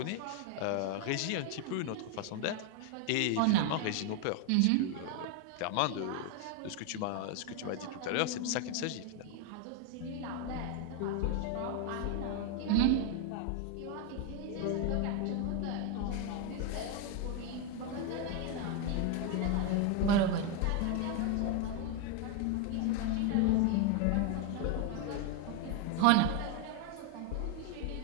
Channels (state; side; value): different; both; correlation 0.01